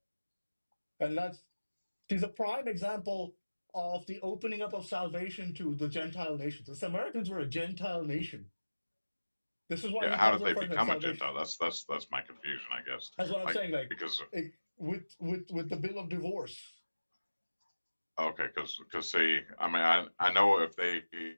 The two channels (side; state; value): both; inverted; correlation -1.00